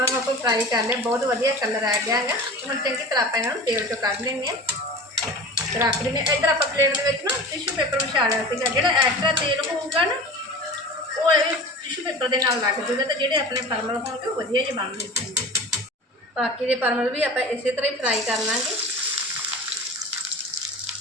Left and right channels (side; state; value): both; normal; correlation 0.36